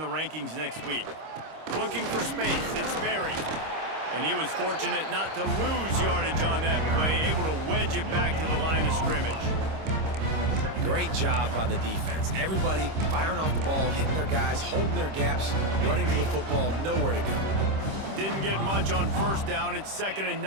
rankings next week. Looking for space, it's Berry. And he was fortunate not to lose yardage on that play, able to wedge it back to the line of scrimmage. Great job by the defense. Everybody firing off the ball, hitting their guys, holding their gaps, running to the football, nowhere to go. Didn't get much on first down. It's 2nd and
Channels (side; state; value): left; late; 26 ms